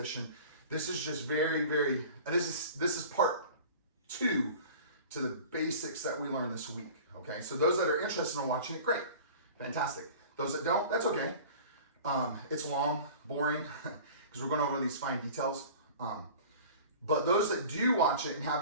This is just very, very, and this is part 2 to the basics that we learned this week. Okay, so those that are interested in watching it, great, fantastic. Those that don't, that's okay. It's long, boring, because we're going over these fine details. But those that do watch it and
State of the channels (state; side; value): inverted; both; correlation -0.41